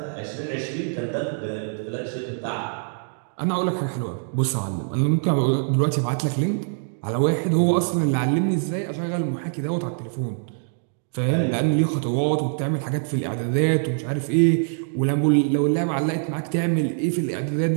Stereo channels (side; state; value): left; silent; digital silence